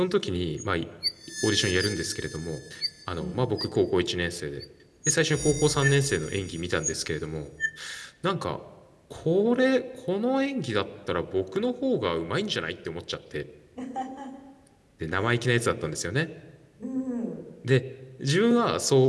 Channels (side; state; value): both; identical; correlation 1.00